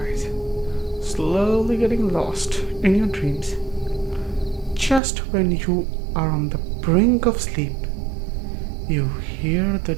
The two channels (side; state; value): left; drops out; at 5.0 s